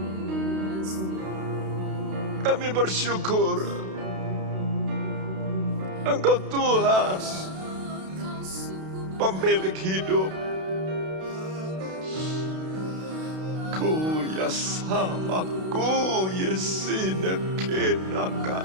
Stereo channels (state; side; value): late; left; 32 ms